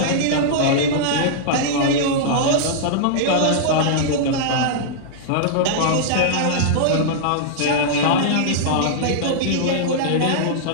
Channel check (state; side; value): different; both; correlation -0.02